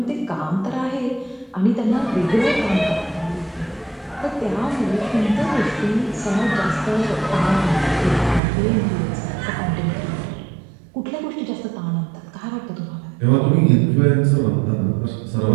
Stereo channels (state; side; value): drops out; left; at 8.4 s